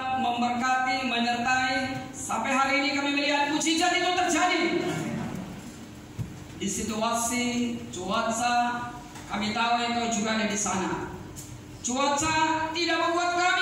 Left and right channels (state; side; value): identical; both; correlation 1.00